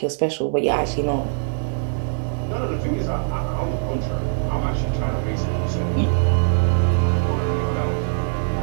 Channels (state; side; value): silent; left; digital silence